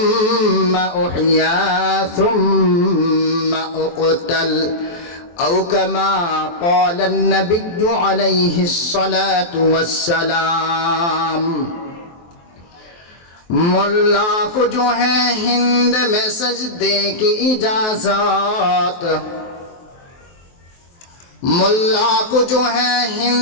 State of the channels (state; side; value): late; right; 23 ms